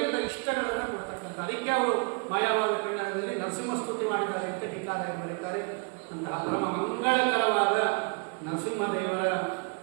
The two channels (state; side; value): quieter; left; 33.6 dB